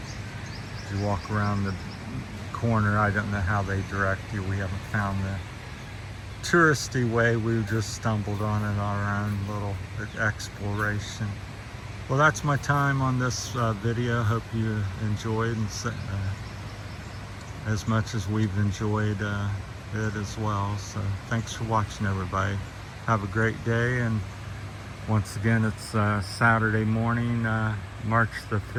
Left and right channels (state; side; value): identical; both; correlation 1.00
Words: You walk around the corner. I don't know how they direct you. We haven't found the touristy way. We just stumbled on it on our own little exploration. Well, that's my time on this video. Hope you enjoyed, and as much as we've enjoyed it as well. So thanks for watching, everybody. Have a great day, and once again, it's Saturday morning, March the